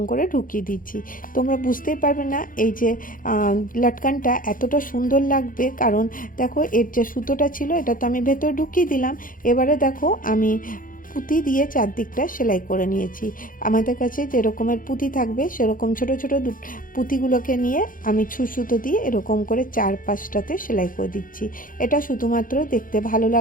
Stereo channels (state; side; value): late; right; 0.40 ms